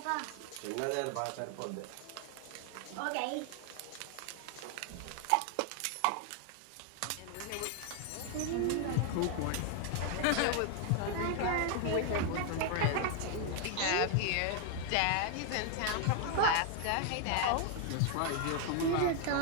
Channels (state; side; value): different; both; correlation 0.00